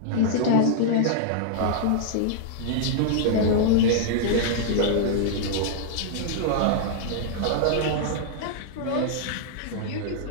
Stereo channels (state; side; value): different; both; correlation -0.01